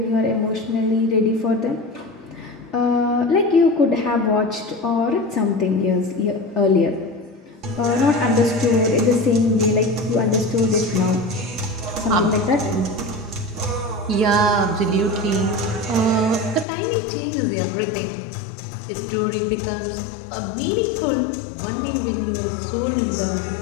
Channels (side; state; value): right; drops out; at 16.7 s